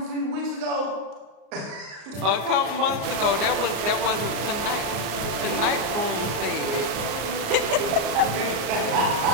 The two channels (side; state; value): left; late; 35 ms